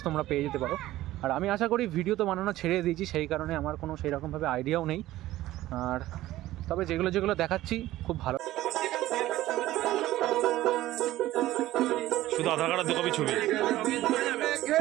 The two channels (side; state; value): left; quieter; 15.6 dB